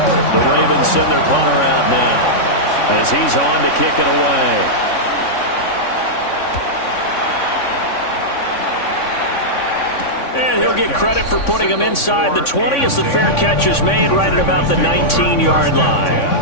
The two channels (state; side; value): late; right; 3.5 ms